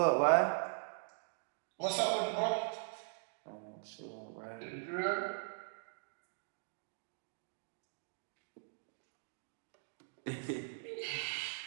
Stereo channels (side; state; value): left; silent; digital silence